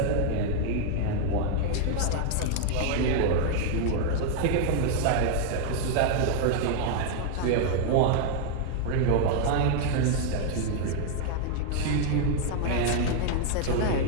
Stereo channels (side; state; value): both; different; correlation 0.00